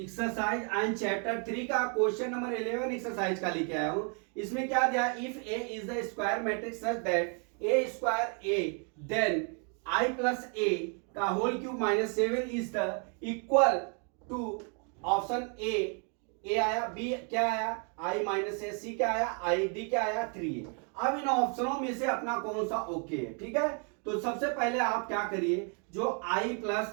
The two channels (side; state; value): left; quieter; 38.9 dB